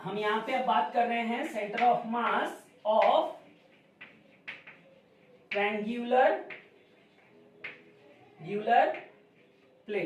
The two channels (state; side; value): identical; both; correlation 1.00